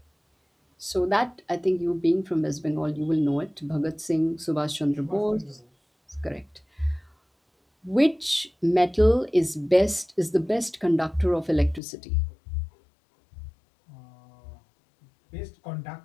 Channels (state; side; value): drops out; right; at 11.8 s